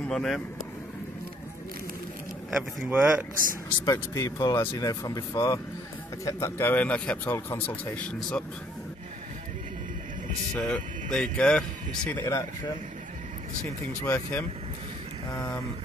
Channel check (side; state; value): both; normal; correlation 0.62